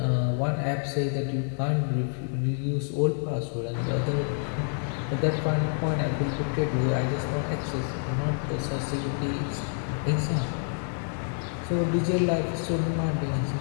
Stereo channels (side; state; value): right; silent; 56 dB below the other